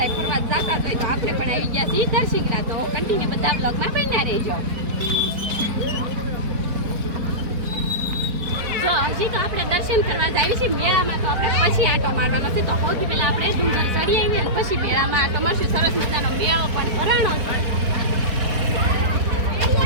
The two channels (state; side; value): late; left; 4.4 ms